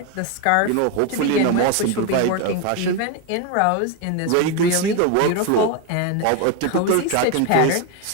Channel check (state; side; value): different; both; correlation 0.02